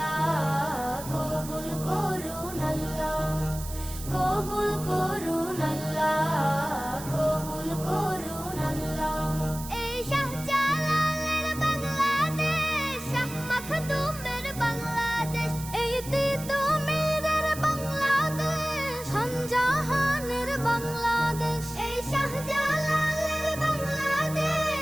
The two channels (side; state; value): right; noise; hiss, 12 dB below the sound